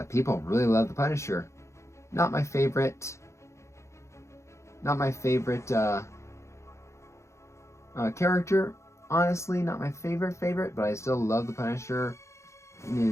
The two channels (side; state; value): right; late; 0.14 ms